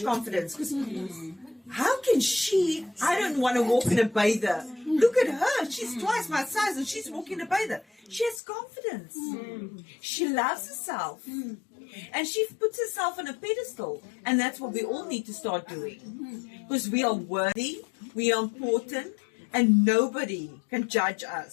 confidence. Because how can she? I don't want to walk in a bather. Look at her. She's twice my size and she's walking in a bather. She has confidence. She loves herself. And she puts herself on a pedestal. And that's what we all need to start doing. Because we are worthy, we are important, and nobody can judge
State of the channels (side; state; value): right; drops out; at 8.4 s